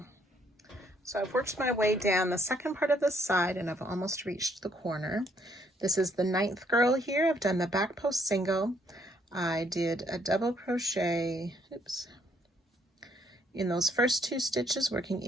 So I've worked my way down the second part of the side and I've almost reached the corner. This is the 9th girl here. I've done the back post single. I did a double crochet, in those first 2 stitches, working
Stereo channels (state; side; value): normal; both; correlation 0.69